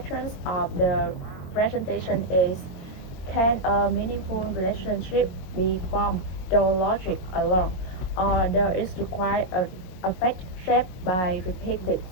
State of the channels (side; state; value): right; late; 22 ms